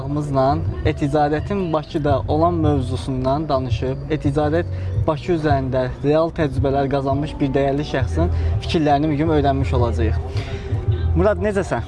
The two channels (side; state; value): both; identical; correlation 1.00